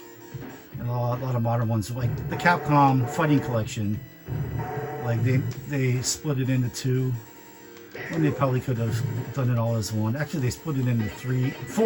and a lot of modern ones, like the Capcom Fighting Collection, like they split it into two, and they probably could have done it all as one. Actually, they split it into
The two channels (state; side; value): identical; both; correlation 1.00